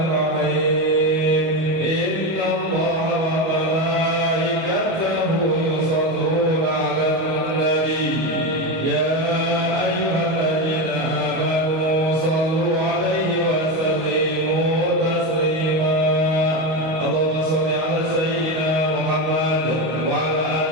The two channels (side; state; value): left; late; 25 ms